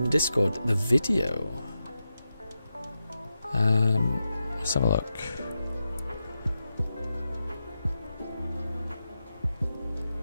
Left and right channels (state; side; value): inverted; both; correlation -0.90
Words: the Discord. The video? Let's have a look.